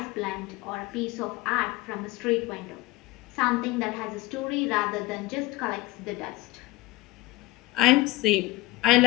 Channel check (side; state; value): right; quieter; 20.3 dB